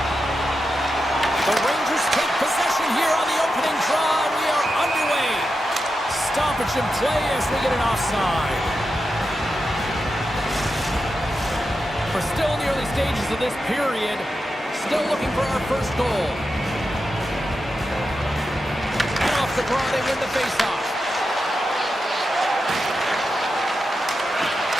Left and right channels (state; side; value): normal; both; correlation 0.89